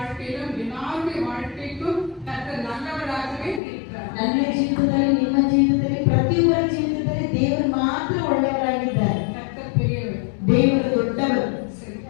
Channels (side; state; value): right; drops out; at 3.6 s